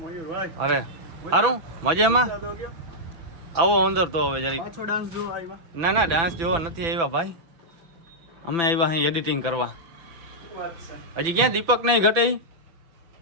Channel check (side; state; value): left; late; 6.0 ms